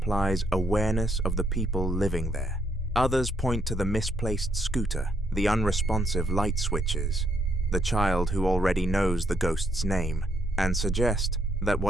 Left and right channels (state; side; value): normal; both; correlation 0.74